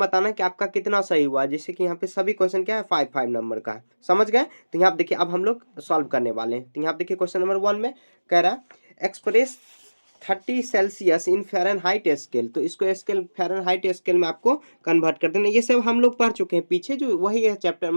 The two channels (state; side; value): inverted; both; correlation -1.00